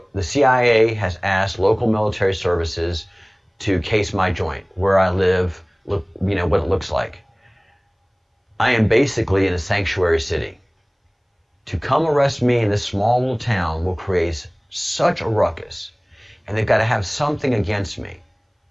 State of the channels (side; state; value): both; identical; correlation 1.00